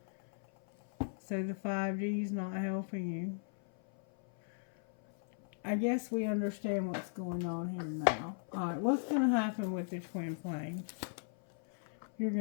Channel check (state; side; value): silent; right; 53 dB below the other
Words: So the 5D is not helping you. I guess we understand what's going on here now. Alright, what's going to happen with the twin flame? You're